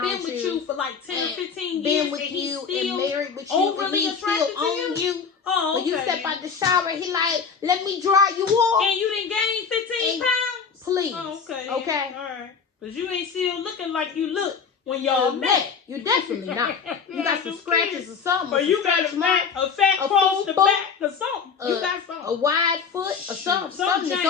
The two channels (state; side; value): quieter; right; 6.0 dB